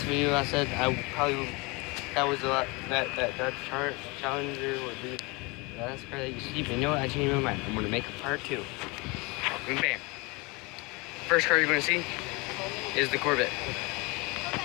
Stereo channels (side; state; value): right; quieter; 27.0 dB